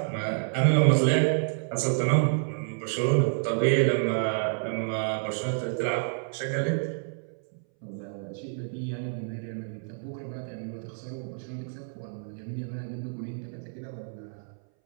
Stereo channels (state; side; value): silent; left; 59 dB below the other